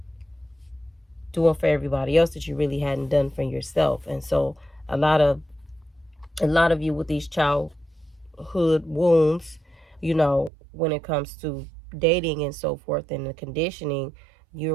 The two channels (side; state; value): left; drops out; at 10.5 s